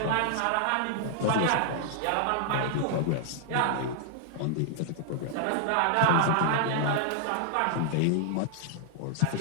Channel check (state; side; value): different; both; correlation 0.00